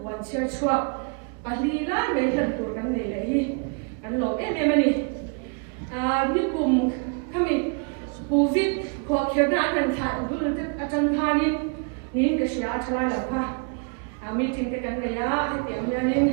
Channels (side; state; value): left; quieter; 37.4 dB